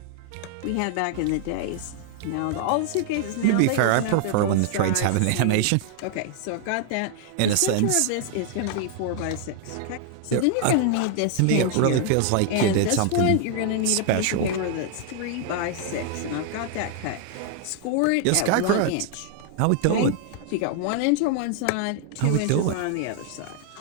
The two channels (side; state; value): both; different; correlation 0.00